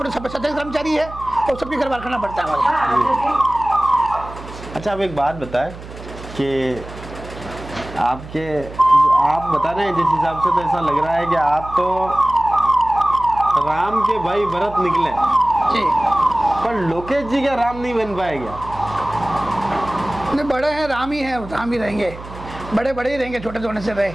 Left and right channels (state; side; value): noise; right; hum, 14 dB below the sound